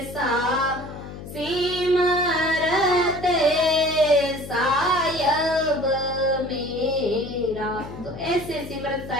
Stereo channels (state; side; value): noise; left; hum, 12 dB below the sound